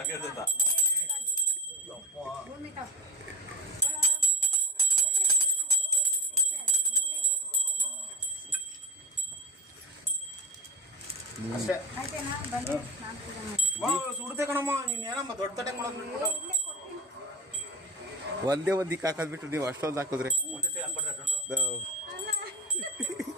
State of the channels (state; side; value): normal; both; correlation 0.23